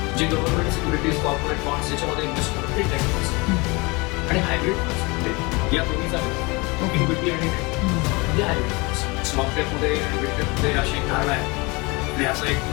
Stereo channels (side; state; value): right; quieter; 26.4 dB